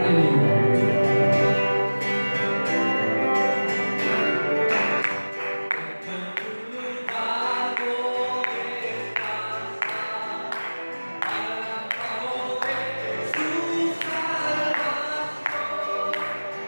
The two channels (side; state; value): both; inverted; correlation -1.00